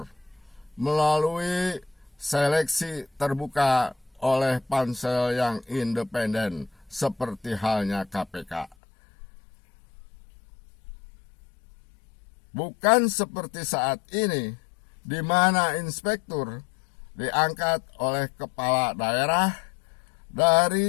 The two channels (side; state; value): right; drops out; at 8.8 s